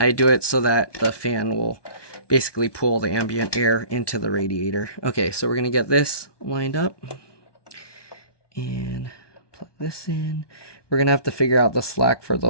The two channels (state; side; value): late; right; 1.2 ms